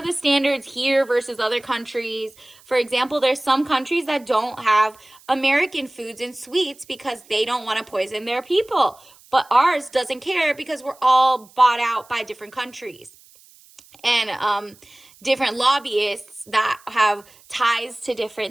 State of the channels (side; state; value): right; noise; hiss, 26 dB below the sound